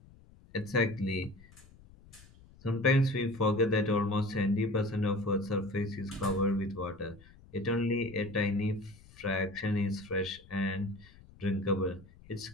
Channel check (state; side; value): noise; left; rumble, 23 dB below the sound